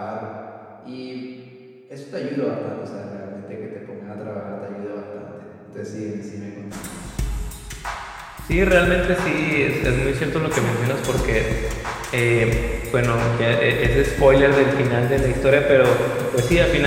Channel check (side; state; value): both; identical; correlation 1.00